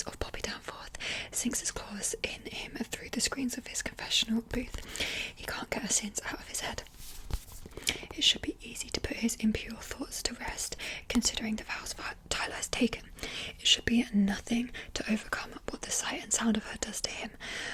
of Poppy Danforth sinks its claws in him through the screens of his confessional booth. He can't get her sins out of his head. It should be easy to put his impure thoughts to rest, considering the vows Tyler has taken. It should be nothing to overcome what the sight and sound of her does to him,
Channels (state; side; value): identical; both; correlation 1.00